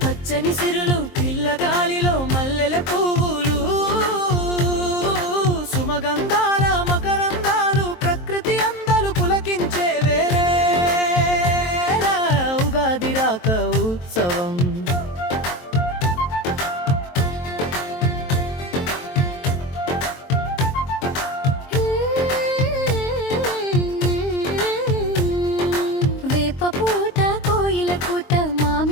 పచ్చని సిరులు పిల్లగాలిలో మల్లెల పువ్వులు సుమగంధాల మకరందాలు ప్రకృతి అందలు పులకించే వేళ ఉగాది రాక ఉత్సవం. వేప పూత కోయిల కూత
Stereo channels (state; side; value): late; right; 23 ms